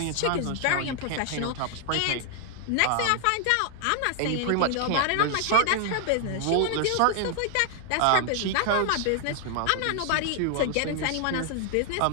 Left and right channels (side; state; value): both; different; correlation 0.00